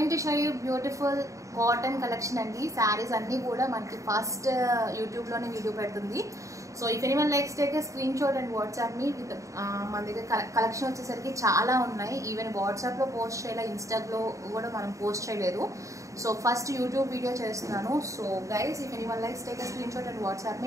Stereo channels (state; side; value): late; left; 0.15 ms